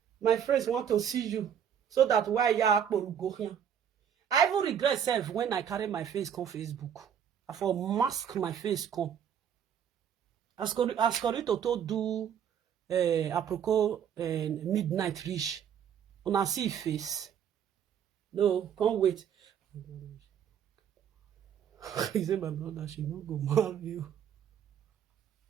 My friends want to see you. So that why you go here. I even regret self when I carry my face on Facebook. I for mask my face come. As Corito to do apropos midnight reach. Una see face. No, can't wait. He said, my brother, she not go marry you.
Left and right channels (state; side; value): quieter; left; 8.7 dB